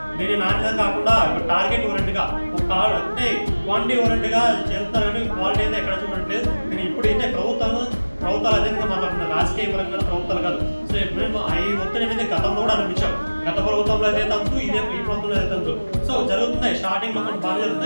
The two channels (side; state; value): both; inverted; correlation -1.00